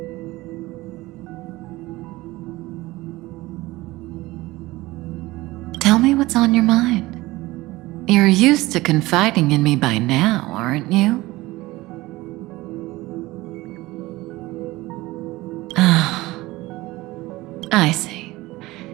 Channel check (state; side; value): quieter; left; 19.4 dB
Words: Tell me what's on your mind. You're used to confiding in me by now, aren't you? Ah, I see.